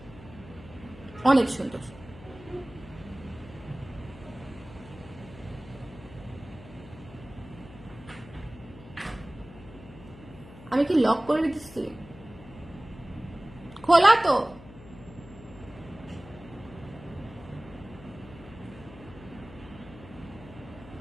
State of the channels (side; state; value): left; noise; hum, 18 dB below the sound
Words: অনেক সুন্দর। আমি কি লক করে দিচ্ছি? খোলা তো।